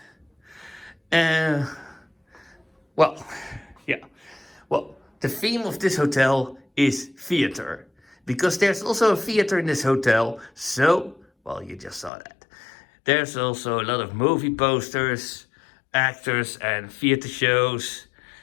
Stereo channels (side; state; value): right; drops out; at 12.1 s